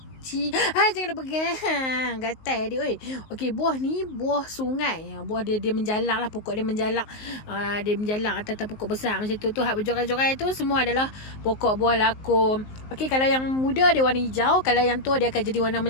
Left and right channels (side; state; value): right; late; 19 ms